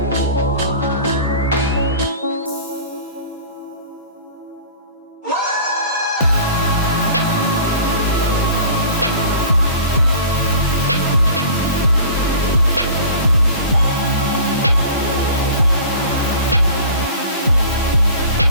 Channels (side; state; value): both; inverted; correlation -0.42